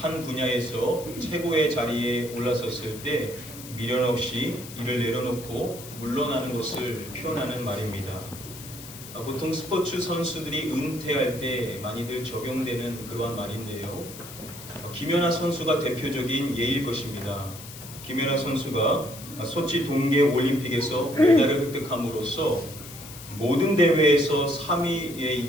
분야에서 최고의 자리에 올라섰을 때 미련 없이 이를 내려놓고 물러나는 것을 표현하는 말입니다. 보통 스포츠 선수들이 은퇴할 때 많이들 적용되는 그러한 말인데요. 김연아 선수가 대표적인 예일 것입니다. 김연아 선수가 소치 동계 올림픽에서 메달을 획득함으로써 모든 대회에서 3위에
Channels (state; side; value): noise; left; hiss, 14 dB below the sound